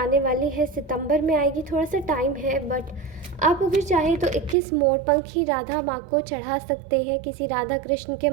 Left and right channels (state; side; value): drops out; left; at 4.5 s